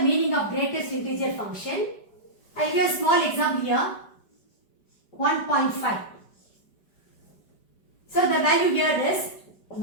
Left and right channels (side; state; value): right; late; 5.1 ms